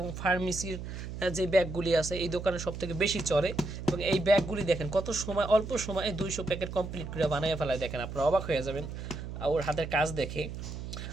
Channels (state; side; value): noise; right; hum, 8 dB below the sound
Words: ফার্মেসির যে ব্যাগগুলি আছে এই দোকানে সব থেকে বেশি চলে। এবং এই ব্যাগগুলি দেখেন কত সময়, অল্প সময়ে 200 প্যাকেট কমপ্লিট করে বানিয়ে ফেলায়। দেখেন আপনারা অবাক হয়ে যাবেন ওর হাতের কাজ দেখে।